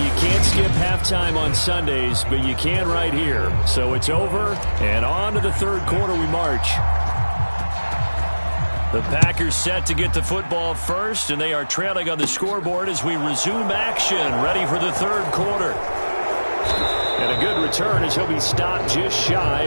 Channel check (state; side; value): inverted; both; correlation -1.00